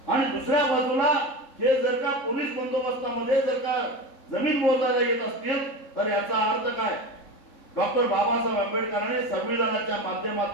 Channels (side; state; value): right; late; 3.7 ms